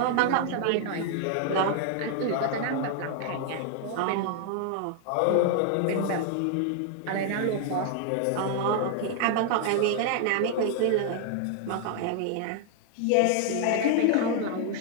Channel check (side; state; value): both; different; correlation 0.00